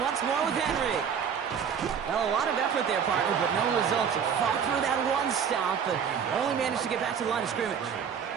more with Henry. Well, a lot of effort there, partner, but no results. Fought through that one stop, but only managed to get back to the line of scrimmage.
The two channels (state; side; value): quieter; left; 7.3 dB